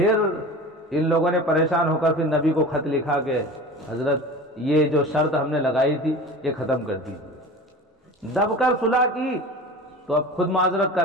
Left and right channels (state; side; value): normal; both; correlation 0.36